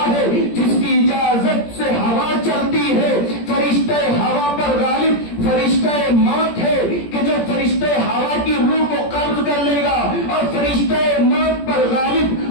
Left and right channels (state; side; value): late; right; 17 ms